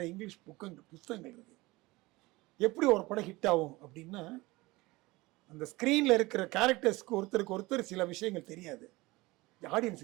இங்கிலீஷ் புத்தகங்கள் இருக்குது. எப்படி ஒரு படம் ஹிட் ஆகும் அப்படின்னா, அந்த ஸ்க்ரீனில் இருக்கிற கேரக்டர்ஸ்க்கு ஒருத்தருக்கு ஒருத்தர் சில விஷயங்கள் தெரியாது,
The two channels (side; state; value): left; quieter; 21.4 dB